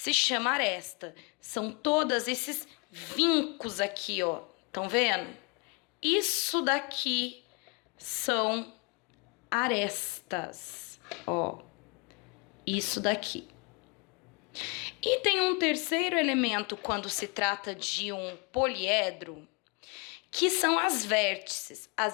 chama aresta. São todos esses vincos aqui, ó. Estão vendo? Isso daqui são arestas, ó. Isso daqui. E tem um terceiro elemento quando se trata de um poliedro, que são as vértices.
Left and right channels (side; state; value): right; quieter; 31.4 dB